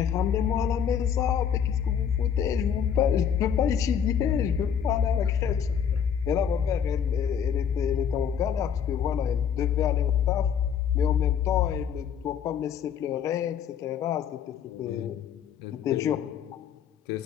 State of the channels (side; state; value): right; quieter; 8.1 dB